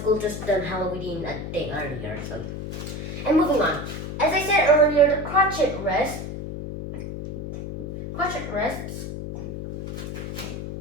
just done Halloween a day earlier. And moving on. As I said earlier, the crotchet rests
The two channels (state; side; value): noise; left; hum, 7 dB below the sound